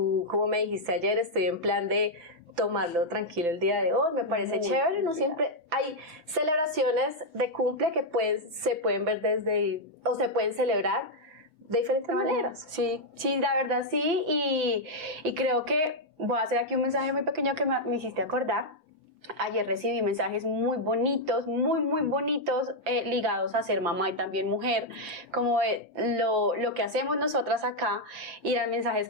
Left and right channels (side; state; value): left; late; 5.9 ms